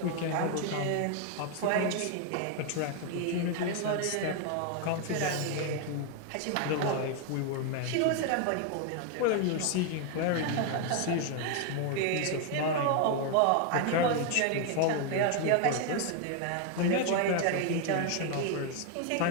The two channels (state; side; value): different; both; correlation 0.01